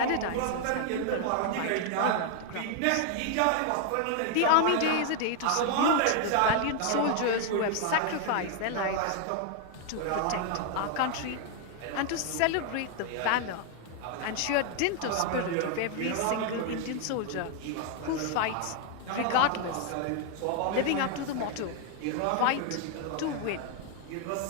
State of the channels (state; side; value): different; both; correlation 0.00